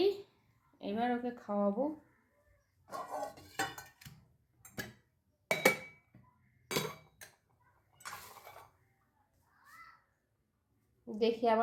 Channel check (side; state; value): both; identical; correlation 1.00